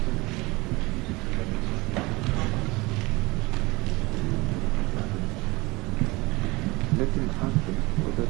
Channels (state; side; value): quieter; left; 23.3 dB